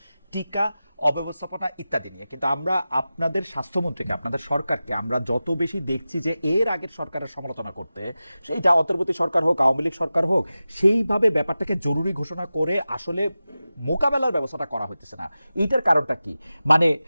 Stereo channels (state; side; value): inverted; both; correlation -0.95